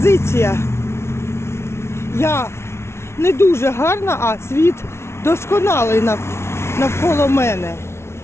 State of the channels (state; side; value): late; right; 0.13 ms